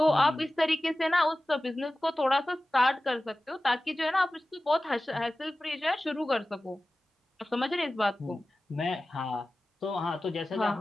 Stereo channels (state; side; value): normal; both; correlation 0.96